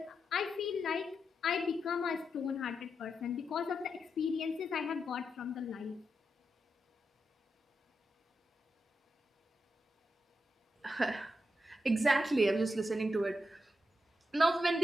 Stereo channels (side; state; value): both; normal; correlation 0.85